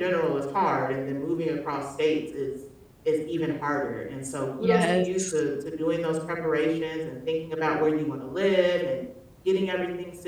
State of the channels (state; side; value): identical; both; correlation 1.00